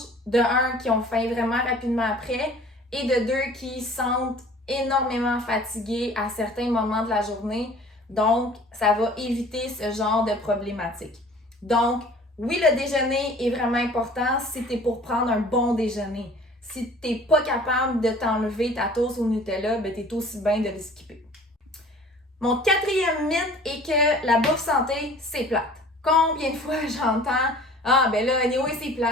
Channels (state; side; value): normal; both; correlation 0.48